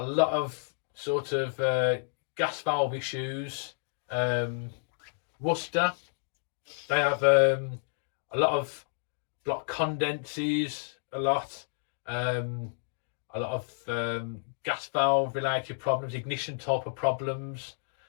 lot of sort of gas valve issues. Worcester, they have a lot of block condenses, a lot of gas valve related problems, ignition type of problems.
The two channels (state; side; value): silent; right; digital silence